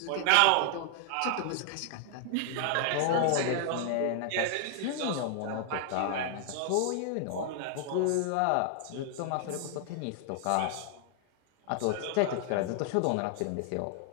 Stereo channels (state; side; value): different; both; correlation 0.00